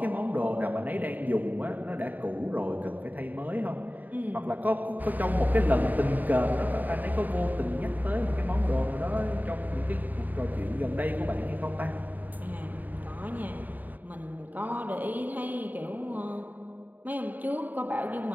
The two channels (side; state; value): left; late; 0.084 ms